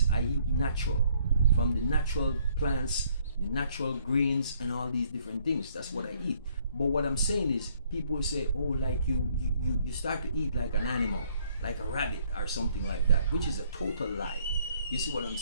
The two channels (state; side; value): inverted; both; correlation -0.64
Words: I eat natural, from the natural plants, the natural greens, and all these different things. That's what I eat. But what I'm saying is, people say, oh, like you start to eat like an animal, like a rabbit or something like that, which is a total lie. You see what I'm